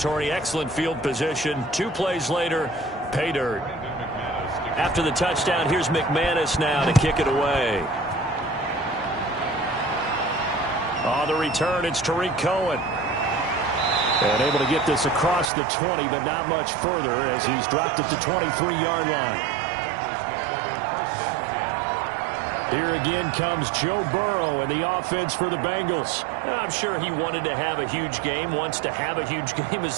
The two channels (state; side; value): drops out; left; at 15.5 s